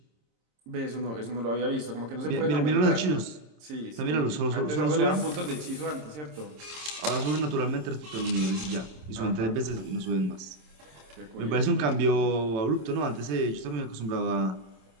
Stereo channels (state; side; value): late; left; 26 ms